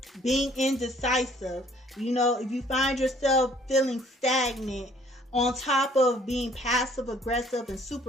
being indecisive, if you find yourself feeling stagnant on top of being passive aggressive and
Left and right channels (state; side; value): normal; both; correlation 0.59